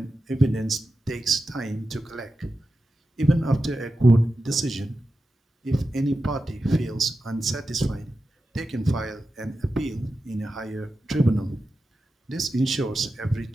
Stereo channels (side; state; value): both; normal; correlation 0.91